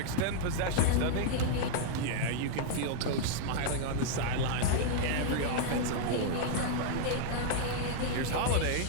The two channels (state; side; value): different; both; correlation -0.01